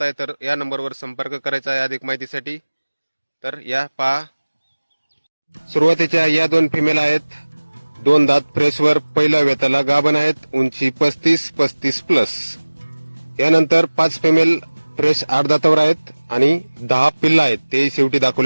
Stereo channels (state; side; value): inverted; both; correlation -1.00